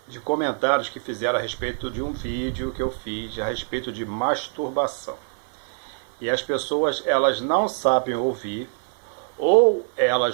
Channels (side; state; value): left; silent; 57 dB below the other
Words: comentários que fizeram a respeito de um vídeo que eu fiz a respeito de masturbação. E as pessoas, elas não sabem ouvir, ou